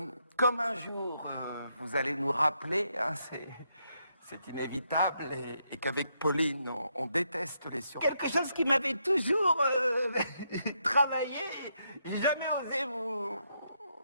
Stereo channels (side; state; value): both; inverted; correlation -0.78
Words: Comme un jour, vous allez nous rappeler, hein, c'est inévitable, et qu'avec Pauline, on déteste les surprises. Quelque chose qui m'avait toujours travaillé, j'ai jamais osé vous...